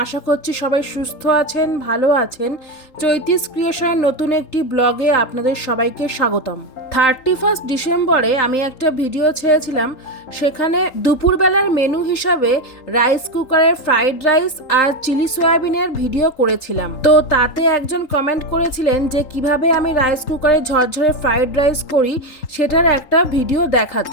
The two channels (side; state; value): right; late; 3.8 ms